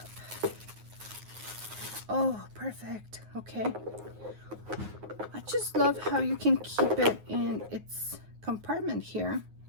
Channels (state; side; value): late; left; 9.5 ms